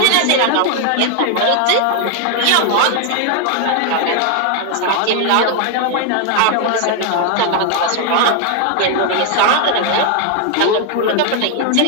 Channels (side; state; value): both; different; correlation 0.00